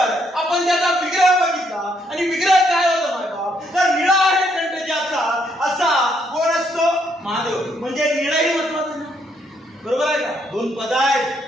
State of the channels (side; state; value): both; normal; correlation 0.72